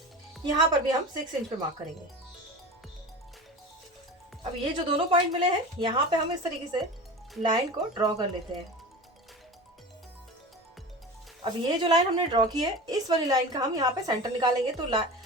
यहाँ पर भी हम 6 इंच पे मार्क करेंगे। अब ये जो दोनों पॉइंट मिले हैं यहाँ पे हम इस तरीके से लाइन को ड्रॉ कर लेते हैं। अब ये जो लाइन हमने ड्रॉ की है इस वाली लाइन का हम यहाँ पे सेंटर निकालेंगे। तो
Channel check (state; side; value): normal; both; correlation 0.32